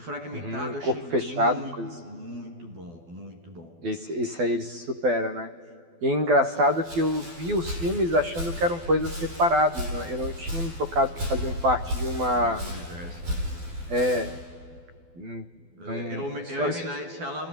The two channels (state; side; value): late; left; 12 ms